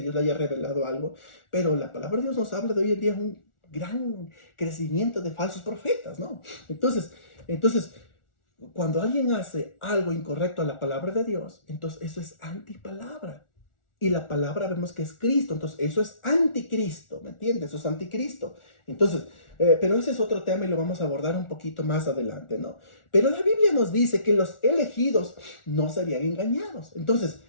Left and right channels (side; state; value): right; late; 1.4 ms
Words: le haya revelado algo, pero la palabra de Dios nos habla de hoy en día un gran crecimiento de falsos profetas, ¿no? Entonces, cuando alguien hace algo incorrecto a la palabra de Dios, entonces eso es antipalabra. Y la palabra vemos que es Cristo, entonces eso es anticristo, ¿me entiendes? Eso es anticristo. Entonces, pero ese es otro tema y lo vamos a abordar un poquito más adelante, ¿no? Pero la Biblia nos dice que los elegidos no serían engañados. Entonces,